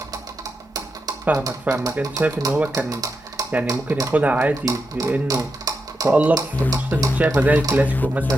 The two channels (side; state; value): both; normal; correlation 0.86